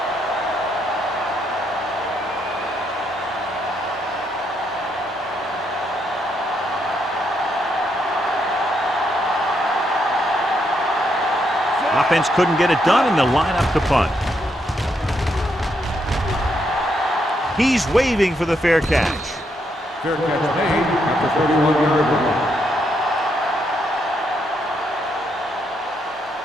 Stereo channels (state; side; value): normal; both; correlation 0.77